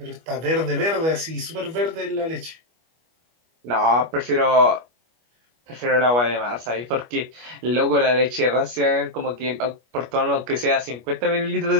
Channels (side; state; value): left; late; 25 ms